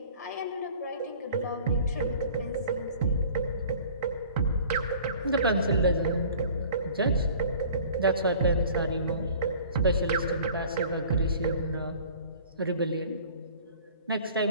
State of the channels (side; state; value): both; inverted; correlation -0.48